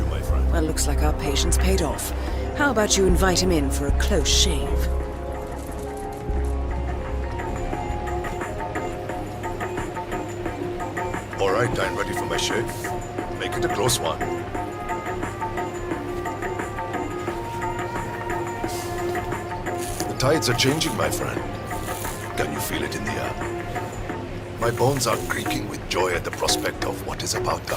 Well, looks like our patience paid off. How about you invite him in for a close shave? All right, I'm ready for my shave. Make it a close one. The tides are changing, my friend. Can you feel it in the air? My bones are creaking with joy at the prospect of what is about to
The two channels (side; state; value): both; identical; correlation 1.00